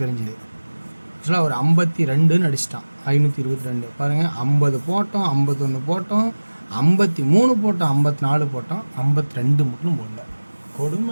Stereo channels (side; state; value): both; inverted; correlation -1.00